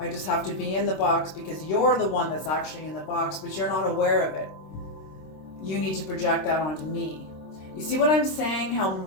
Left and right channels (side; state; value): right; late; 26 ms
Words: just have to be in the box because you're the one that's actually in the box, but you're not aware of it. You need to project that onto me. You see what I'm saying? How